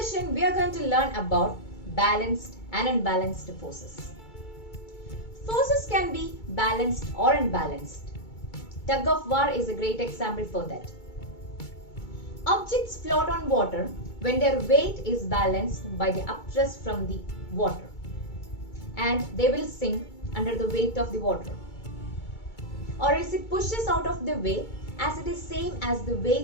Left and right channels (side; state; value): right; late; 2.3 ms